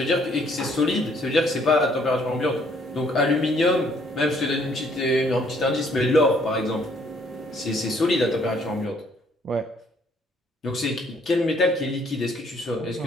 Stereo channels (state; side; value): normal; both; correlation 0.64